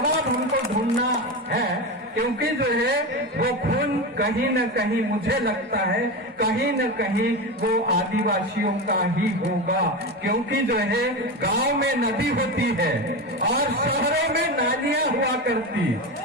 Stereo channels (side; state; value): both; normal; correlation 0.20